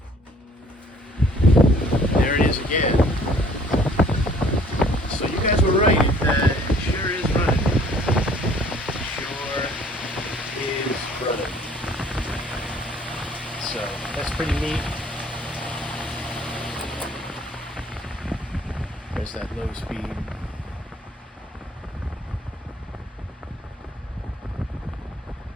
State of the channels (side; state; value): both; normal; correlation 0.56